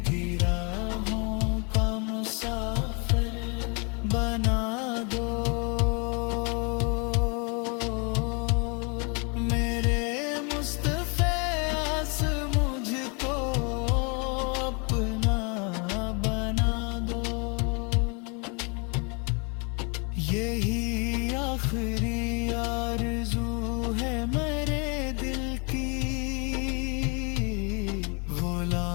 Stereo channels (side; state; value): right; quieter; 33.7 dB